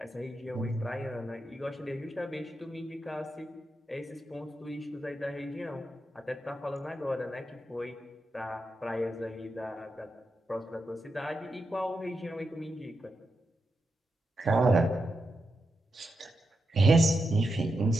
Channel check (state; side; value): normal; both; correlation 0.87